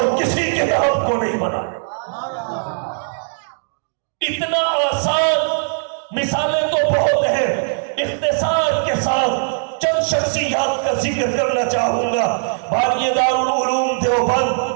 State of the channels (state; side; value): silent; left; digital silence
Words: کسی کتاب کو نہیں بنایا۔ اتنا آسان، مثالیں تو بہت ہیں، اختصار کے ساتھ چند شخصیات کا ذکر کرنا چاہوں گا۔ بانی دارالعلوم دیوبند،